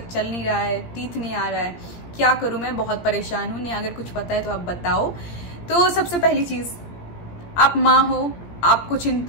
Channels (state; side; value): late; right; 17 ms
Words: चल नहीं रहा है, टीथ नहीं आ रहा है, क्या करूं मैं, बहुत परेशान हूं। नहीं अगर कुछ पता है तो आप बताओ। तो सबसे पहली चीज, आप माँ हो, आपको